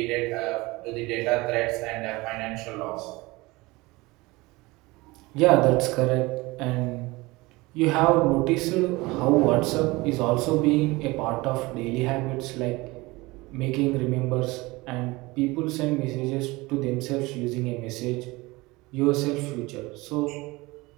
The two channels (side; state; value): left; quieter; 22.2 dB